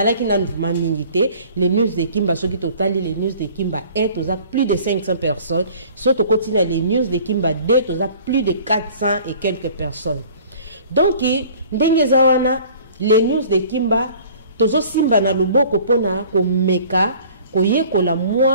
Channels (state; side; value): inverted; both; correlation -0.49